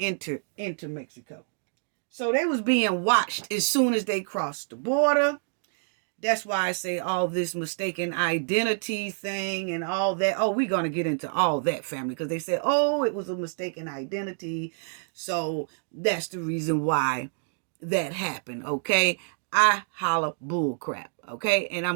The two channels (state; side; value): silent; left; digital silence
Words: entered into Mexico. So they was being watched as soon as they crossed the border. That's why I say all this mistaken identity thing and all that. Oh, we're going to get into all that, family, because they said, oh, it was a mistaken identity. So that's the reason why that happened, okay? I holla bull crap, okay? And